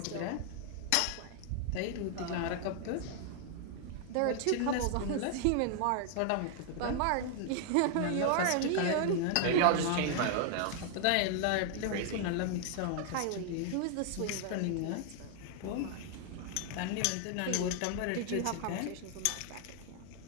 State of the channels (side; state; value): both; different; correlation 0.00